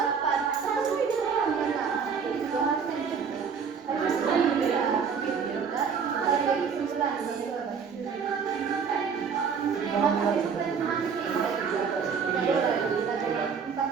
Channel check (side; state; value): left; quieter; 6.3 dB